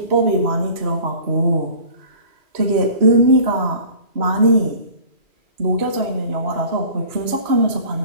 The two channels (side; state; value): left; late; 2.4 ms